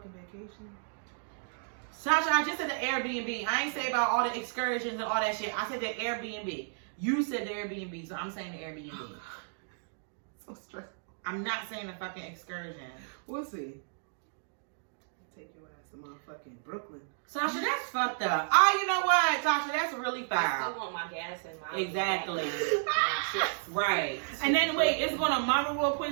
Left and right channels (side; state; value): left; silent; digital silence